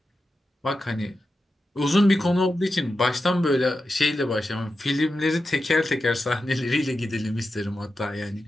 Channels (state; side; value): normal; both; correlation 0.90